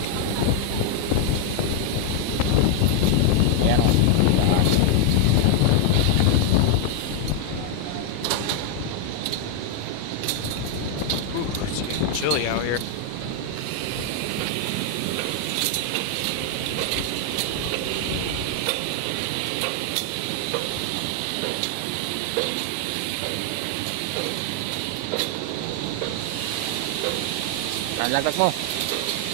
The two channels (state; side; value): different; both; correlation 0.00